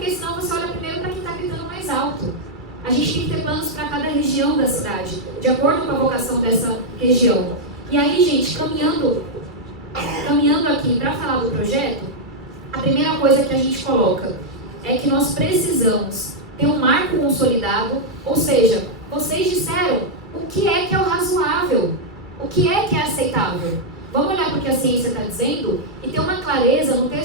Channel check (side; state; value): both; normal; correlation -0.03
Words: senão você olha primeiro para quem está gritando mais alto. A gente tem que ter planos para cada região da cidade, de acordo com a vocação dessa região. E aí, gente, caminhando aqui para falar do projeto, a primeira coisa que a gente coloca é que nós precisamos ter um marco consolidado, ou seja, vocês disseram o que é o razoável, o que é aceitável. Vamos olhar para o que a ciência está dizendo e ter uma clareza no